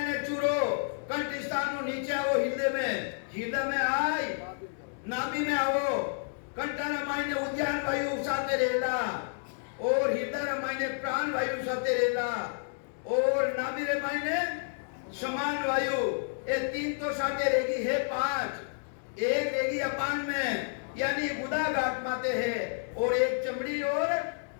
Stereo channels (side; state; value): right; silent; digital silence